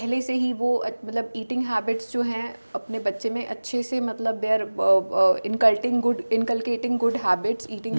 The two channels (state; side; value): inverted; both; correlation -1.00